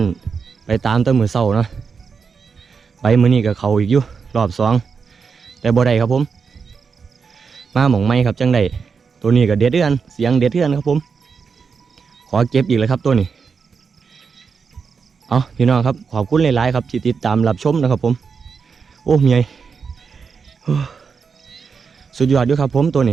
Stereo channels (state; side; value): quieter; left; 5.6 dB